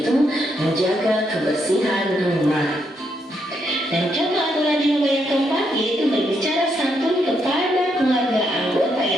menjaga kebersihan rumah. Dan contoh aturan di rumah yang keempat yaitu berbicara santun kepada keluarga anggota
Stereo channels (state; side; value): normal; both; correlation 0.78